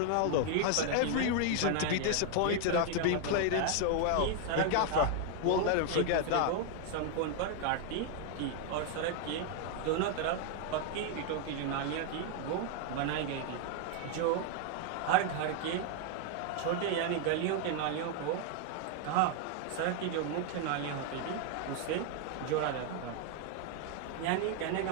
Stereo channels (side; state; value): both; different; correlation 0.00